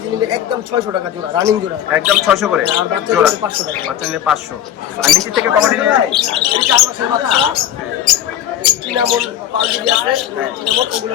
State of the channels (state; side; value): quieter; right; 10.9 dB